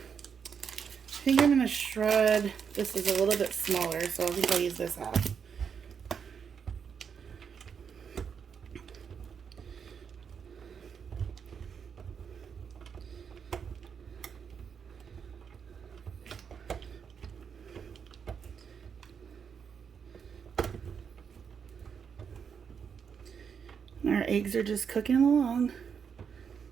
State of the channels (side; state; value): left; quieter; 6.8 dB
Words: think I'm gonna shred. This is a little bit smaller, so I think I'll use this half. Our eggs are just cooking along.